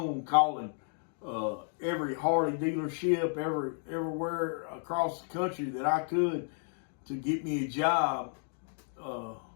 calling every Harley dealership, everywhere across the country that I could to get me a job.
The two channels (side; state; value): right; silent; 56 dB below the other